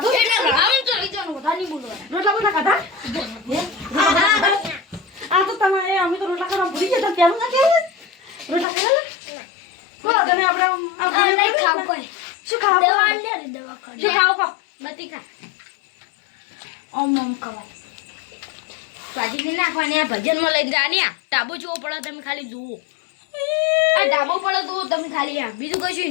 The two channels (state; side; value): drops out; right; at 8.7 s